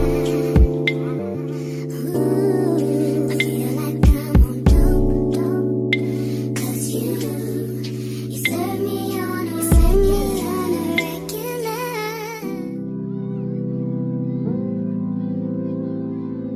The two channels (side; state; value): both; identical; correlation 1.00